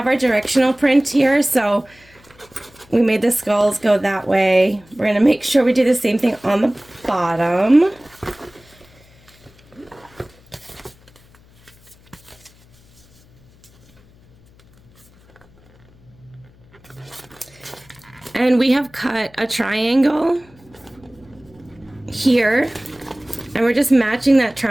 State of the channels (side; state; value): left; noise; hum, 28 dB below the sound